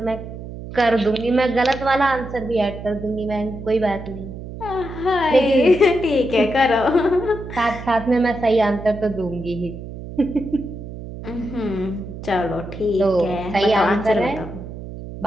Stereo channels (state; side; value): noise; right; hum, 11 dB below the sound